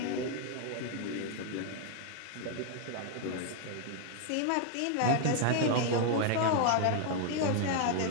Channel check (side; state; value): both; different; correlation 0.00